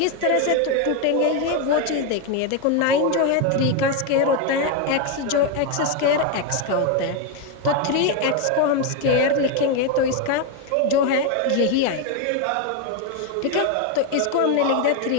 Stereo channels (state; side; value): different; both; correlation 0.02